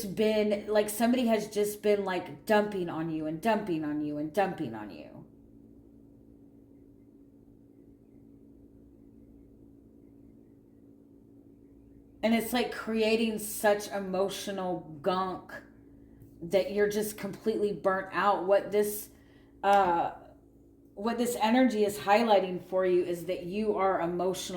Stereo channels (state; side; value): identical; both; correlation 1.00